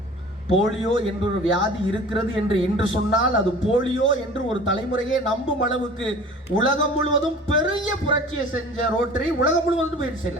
போலியோ என்ற ஒரு வியாதி இருக்கிறது என்று இன்று சொன்னால் அது போலியோ என்று ஒரு தலைமுறையே நம்பும் அளவுக்கு உலகம் முழுவதும் பெரிய புரட்சியை செஞ்ச ரோட்டரி உலகம் முழுவதும் பயிற்சி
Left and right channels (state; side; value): normal; both; correlation 0.44